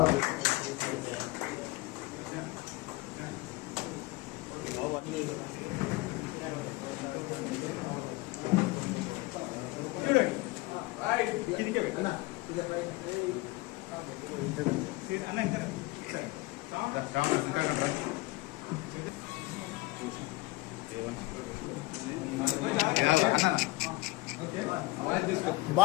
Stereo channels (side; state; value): right; quieter; 21.4 dB